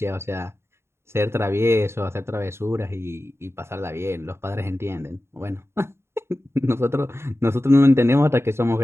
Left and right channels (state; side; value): late; left; 0.12 ms